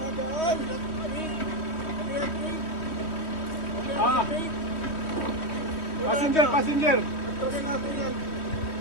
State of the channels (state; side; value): late; right; 3.2 ms